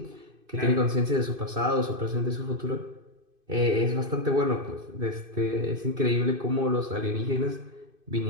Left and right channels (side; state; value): left; late; 2.5 ms